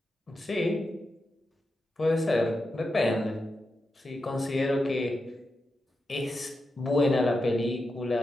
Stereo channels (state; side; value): normal; both; correlation 0.88